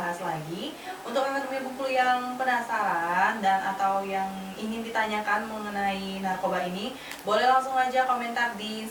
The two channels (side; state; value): both; identical; correlation 1.00